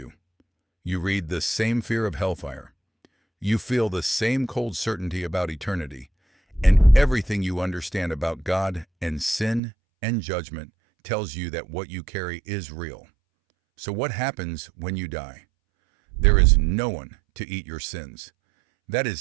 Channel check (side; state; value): left; drops out; at 9.6 s